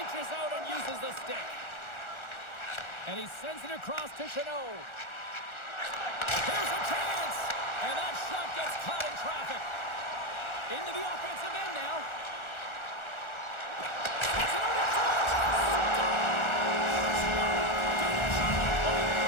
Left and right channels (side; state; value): right; late; 1.4 ms